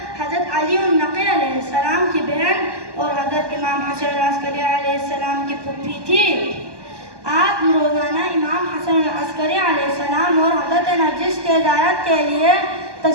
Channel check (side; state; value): left; late; 1.2 ms